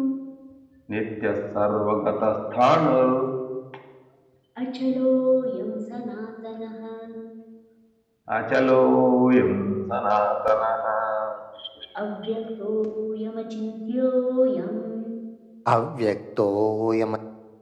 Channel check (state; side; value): identical; both; correlation 1.00